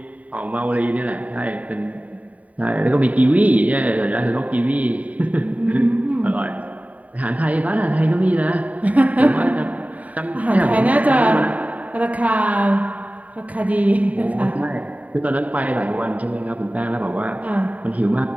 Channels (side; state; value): left; late; 0.070 ms